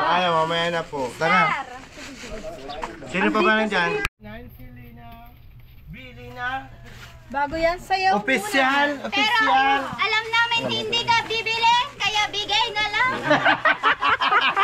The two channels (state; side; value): identical; both; correlation 1.00